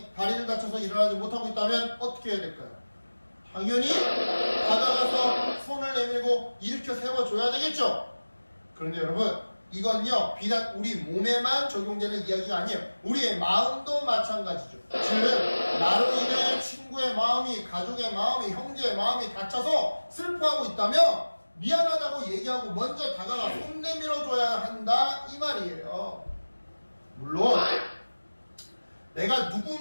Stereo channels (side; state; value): both; inverted; correlation -1.00